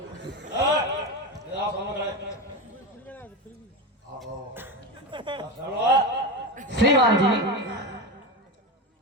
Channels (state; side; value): normal; both; correlation 0.19